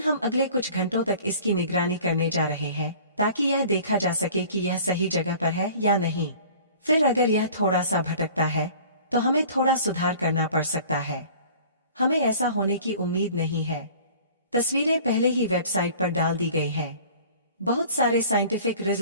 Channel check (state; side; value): inverted; both; correlation -0.46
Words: हम अगले कुछ घंटों तक इसकी निगरानी करने जा रहे हैं ताकि यह देखा जा सके कि यह सही जगह पर है या नहीं। फिर अगर यह थोड़ा सा भटकता है तो हमें थोड़ा सुधार करना पड़ सकता है। हमें ऐसा होने की उम्मीद नहीं है। तस्वीरें पहले ही वेबसाइट पर डाल दी गई हैं। बहुत सारे साइंटिफिक